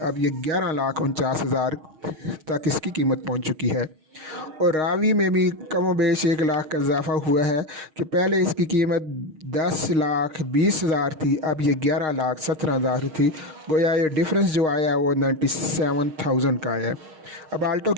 अब ये 11,49,000 तक इसकी कीमत पहुंच चुकी है। और रावी में भी कम बेश 1 लाख का इजाफ़ा हुआ है कि पहले इसकी कीमत 10,20,000 थी, अब ये 11,17,000 थी। गोया ये डिफरेंस जो आया वो 97,000 का है। अब आल्टो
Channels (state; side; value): late; left; 6.4 ms